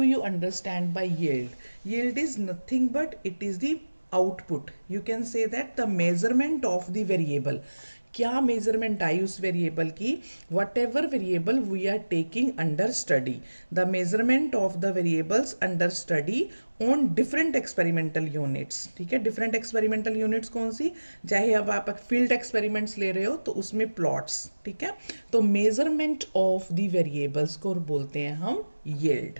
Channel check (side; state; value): both; inverted; correlation -1.00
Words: you understand by yield? Yield is nothing but it is the output. You can say that the measurement of the variable. क्या measurement आई उस variable की? Whatever variable we are taking under study, the measurement of the variables under study on different experimental units. ठीक है, different experimental units कौन सी? चाहे अब आप फील्ड एक्सपेरिमेंट्स ले रहे हो तो उसमें प्लॉट्स. ठीक है, तो मेजरमेंट ऑफ द वेरिएबल्स को बोलते हैं हम yield.